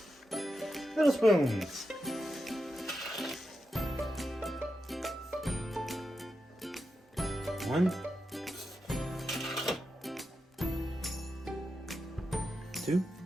little spoons. 1, 2,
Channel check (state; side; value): normal; both; correlation 0.88